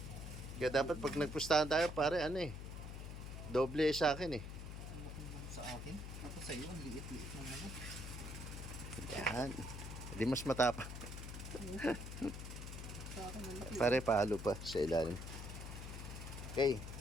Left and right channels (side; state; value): left; noise; hum, 8 dB below the sound